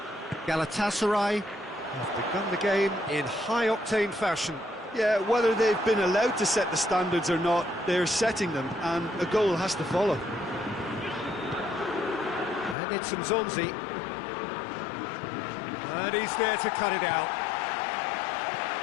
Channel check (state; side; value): drops out; right; at 12.8 s